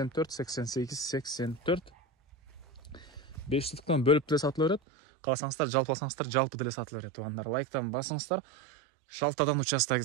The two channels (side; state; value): left; drops out; at 4.8 s